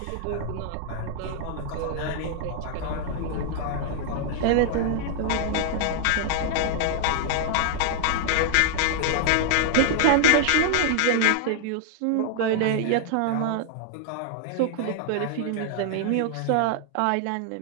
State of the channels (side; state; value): both; different; correlation 0.00